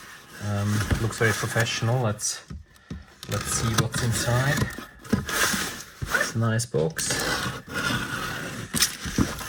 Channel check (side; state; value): both; identical; correlation 1.00